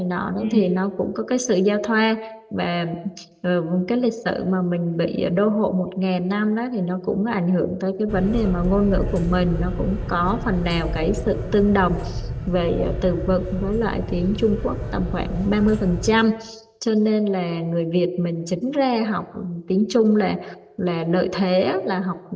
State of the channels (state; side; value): identical; both; correlation 1.00